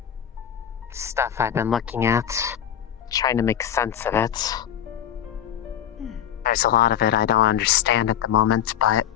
stuff I've been looking at, trying to make sense of it. There's a lot of it I don't understand at the moment, but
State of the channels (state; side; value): quieter; right; 10.0 dB